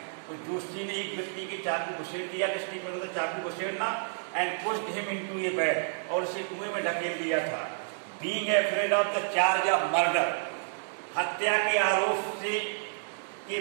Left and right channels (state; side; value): silent; left; digital silence